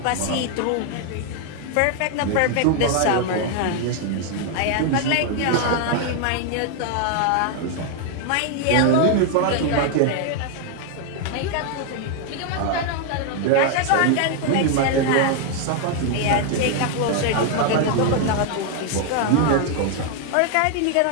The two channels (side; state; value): both; different; correlation 0.00